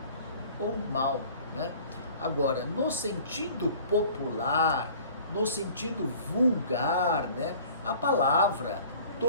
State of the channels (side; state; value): both; inverted; correlation -0.48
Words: ou mal, né? Agora, no sentido popular, no sentido vulgar, né, a palavra